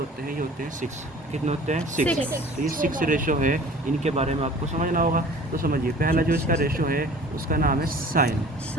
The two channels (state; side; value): normal; both; correlation 0.46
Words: हैं, ये होते हैं 6। कितने होते हैं, 6। तो ये 6 रेशो है, इनके बारे में आपको समझना होगा। तो समझिए, पहला जो इसका रेशो है उसका नाम है साइन,